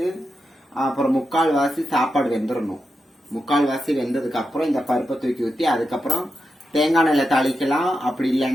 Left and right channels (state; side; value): normal; both; correlation 0.88